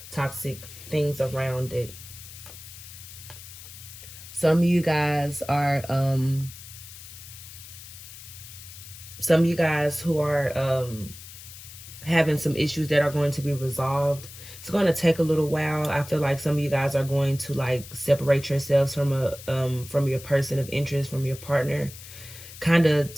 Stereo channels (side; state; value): left; noise; hiss, 15 dB below the sound